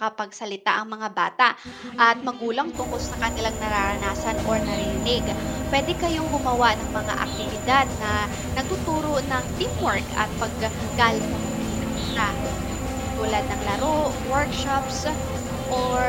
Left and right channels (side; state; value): both; identical; correlation 1.00